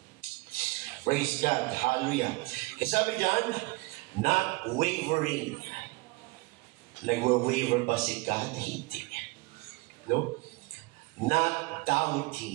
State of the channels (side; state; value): left; quieter; 25.0 dB